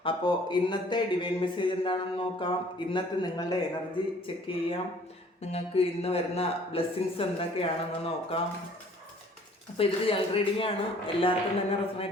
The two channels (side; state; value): both; normal; correlation 0.55